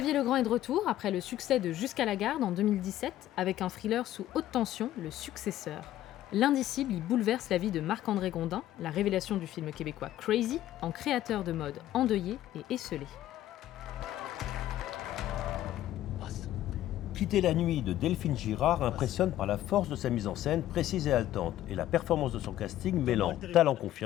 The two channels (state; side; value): quieter; right; 13.4 dB